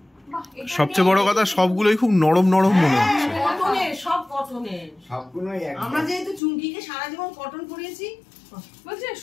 বাহ, এটা সবচেয়ে বড় কথা, সবগুলোই খুব নরম নরম মনে হচ্ছে। কটনের, সব কটনের। সবগুলোই একদম। আমরা যেহেতু চুমকিকে সারা জীবন কটন পরিয়েছি, বলছে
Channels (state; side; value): drops out; right; at 6.4 s